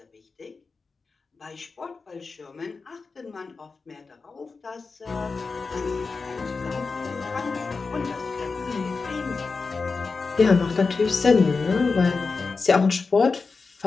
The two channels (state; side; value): quieter; right; 4.4 dB